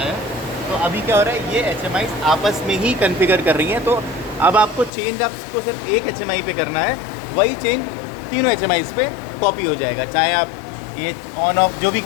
तो अभी क्या हो रहा है, ये HMI आपस में ही कॉन्फ़िगर कर रही हैं। तो अब आपको चेंज आपको सिर्फ एक HMI पे करना है, वही चेंज तीनों HMI पे कॉपी हो जाएगा। चाहे आप ये ऑन ऑफ जो भी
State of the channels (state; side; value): drops out; right; at 4.9 s